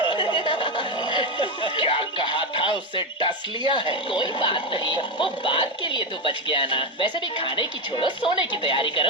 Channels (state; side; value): normal; both; correlation 0.10